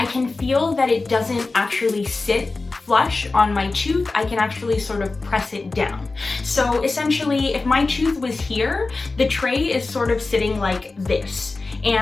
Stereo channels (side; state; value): right; quieter; 3.6 dB